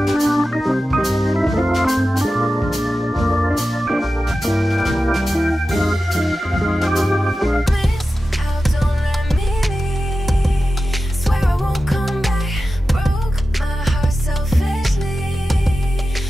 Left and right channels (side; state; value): both; normal; correlation 0.93